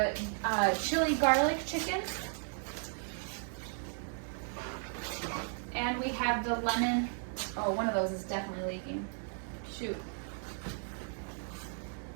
chili garlic chicken. And we have the lemon, oh, one of those is definitely leaking. Shoot.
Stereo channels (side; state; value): left; silent; 54 dB below the other